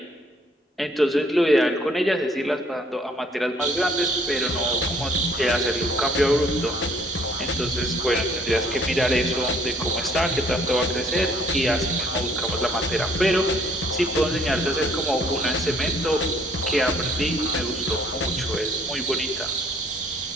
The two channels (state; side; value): normal; both; correlation 0.62